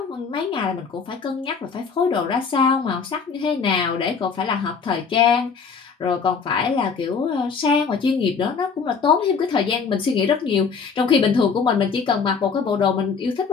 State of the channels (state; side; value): quieter; right; 5.6 dB